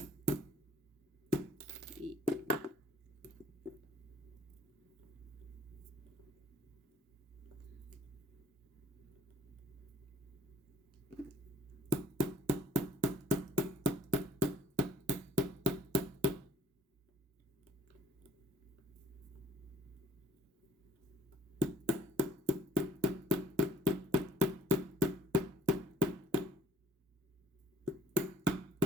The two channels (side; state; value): both; normal; correlation 0.57